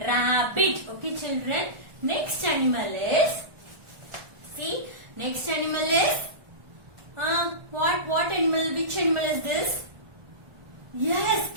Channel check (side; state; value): left; late; 1.4 ms